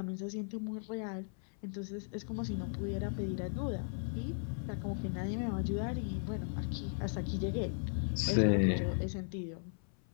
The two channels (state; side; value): silent; right; 53 dB below the other